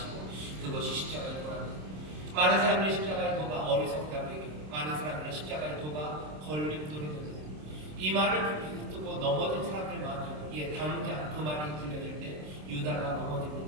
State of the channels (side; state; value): left; late; 26 ms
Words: 그것이 십자가의 도랍니다. 많은 사람들이 십자가의 도가 어리석다고 얘기해요. 많은 사람들은 십자가의 도가 걸림돌이 됩니다. 이 말을 듣고 넘어진 사람들 많아요. 예, 당장 그 말이 들려질 때 유다가